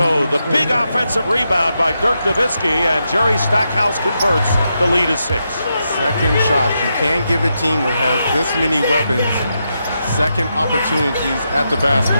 the big offensive rebound by Dirk Nowitzki, and Jerry Stackhouse converts. The lead is 6. Second shot. You can't give a team that has this many weapons second opportunities at the basket.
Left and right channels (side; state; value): both; inverted; correlation -0.84